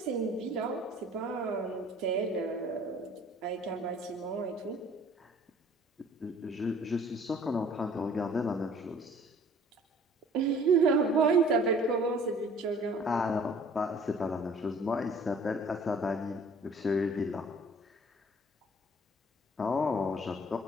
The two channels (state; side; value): normal; both; correlation 0.52